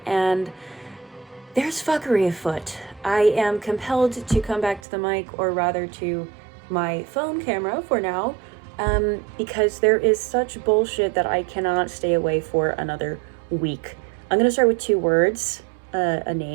and there's fuckery afoot. I am compelled to come back to the mic, or rather to my phone camera for now, because there is such bullshit that I cannot stay away for another week. I'm gonna start with two words, a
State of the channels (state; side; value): drops out; left; at 4.8 s